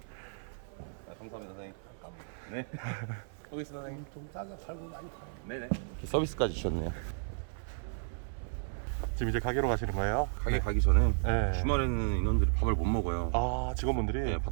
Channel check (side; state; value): left; silent; 55 dB below the other